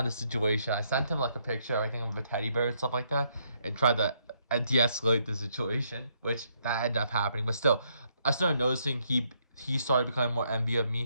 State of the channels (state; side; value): inverted; both; correlation -0.73